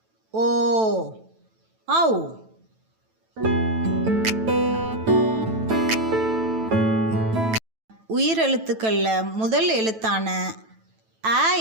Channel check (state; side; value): late; left; 9.1 ms